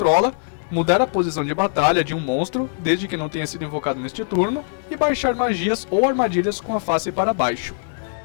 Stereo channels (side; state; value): right; silent; digital silence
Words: mudar a posição de batalha de um monstro, desde que não tenha sido invocado neste turno, e baixar magias ou armadilhas com a face para baixo.